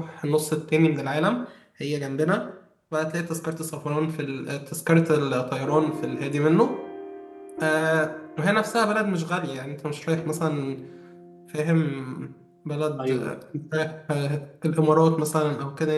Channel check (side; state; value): both; identical; correlation 1.00